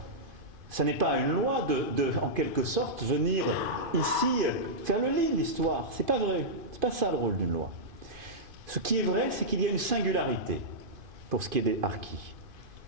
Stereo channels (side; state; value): left; late; 2.5 ms